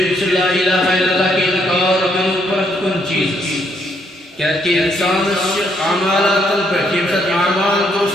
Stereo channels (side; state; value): both; normal; correlation 0.72